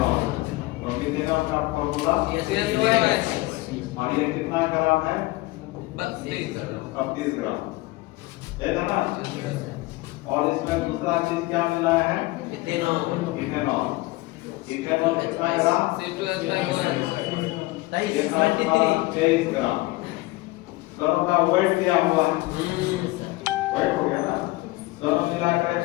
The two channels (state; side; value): quieter; right; 20.7 dB